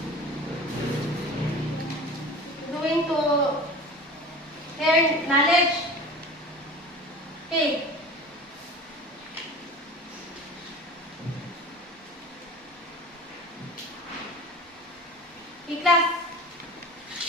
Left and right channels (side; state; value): both; normal; correlation 0.37